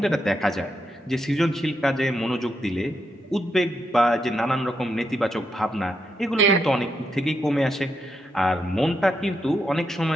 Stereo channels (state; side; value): normal; both; correlation 0.82